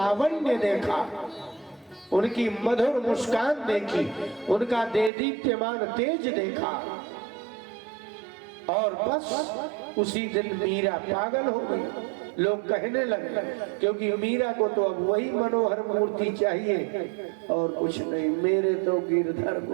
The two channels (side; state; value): left; drops out; at 5.1 s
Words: देखा, उनकी मधुर मुस्कान देखी, उनका देदीप्यमान तेज देखा। और बस उसी दिन मीरा पागल हो गई। लोग कहने लगे क्योंकि मीरा को तो अब वही मनोहर मूर्ति चाहिए और कुछ नहीं, मेरे तो गिरधर